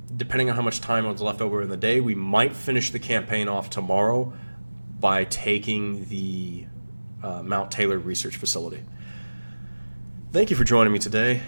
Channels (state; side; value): inverted; both; correlation -1.00